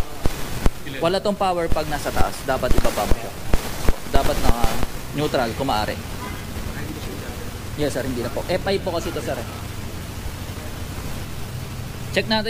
Wala tong power pag nasa taas. Dapat ibaba mo siya. Dapat na neutral kung maaari. Yes sir, hindi na po. F5 po kasi ito sir. Check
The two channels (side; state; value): both; identical; correlation 1.00